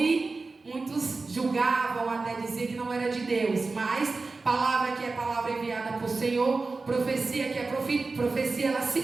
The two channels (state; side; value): quieter; left; 3.8 dB